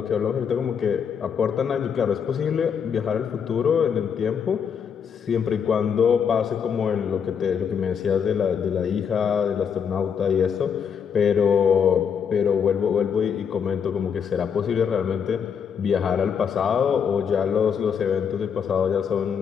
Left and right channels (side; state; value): right; quieter; 7.2 dB